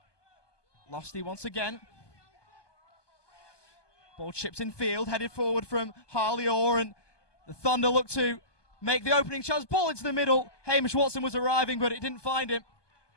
Losty once again. Ball chipped in field, headed forward from Harley Orr, and the Thunder look to make the opening chance. Ball into the middle. Hamish Watson was arriving, but it didn't find him.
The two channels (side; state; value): right; late; 1.2 ms